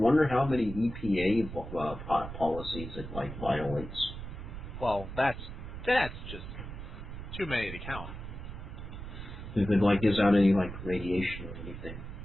how many EPA policies it violates. Well, that's just too many to count. If it gives out any radiation or anything.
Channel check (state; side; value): noise; right; rumble, 9 dB below the sound